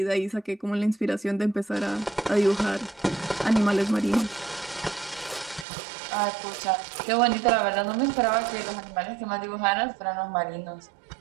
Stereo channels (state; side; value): drops out; left; at 5.7 s